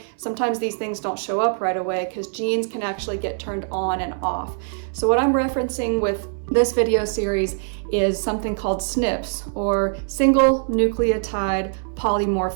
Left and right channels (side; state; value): left; silent; 62 dB below the other